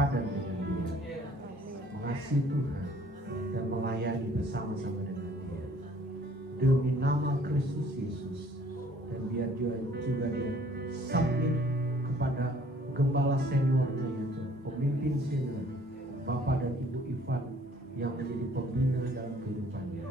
dengan dia, mengasihi Tuhan dan melayani bersama-sama dengan dia demi nama Kristus Yesus. Dan biar juga dia submit kepada gembala seniornya yaitu pemimpin senior Bapak dan Ibu Ivan yang menjadi pembina dalam kehidupannya.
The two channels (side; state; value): both; normal; correlation 0.57